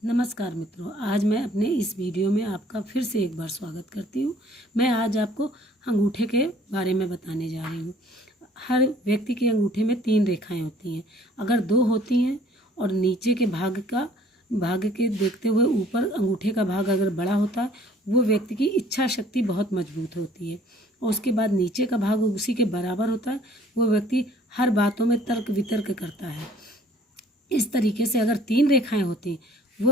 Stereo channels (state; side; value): normal; both; correlation 0.55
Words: नमस्कार मित्रों, आज मैं अपने इस वीडियो में आपका फिर से एक बार स्वागत करती हूँ। मैं आज आपको अंगूठे के बारे में बताने जा रही हूँ। हर व्यक्ति के अंगूठे में 3 रेखाएं होती हैं। अगर 2 होती हैं और नीचे के भाग के देखते हुए ऊपर अंगूठे का भाग अगर बड़ा होता है, वो व्यक्ति की इच्छा शक्ति बहुत मजबूत होती है। और उसके बाद नीचे का भाग उसी के बराबर होता है, वो व्यक्ति हर बातों में तर्क वितर्क करता है। इस तरीके से अगर 3 रेखाएं होती,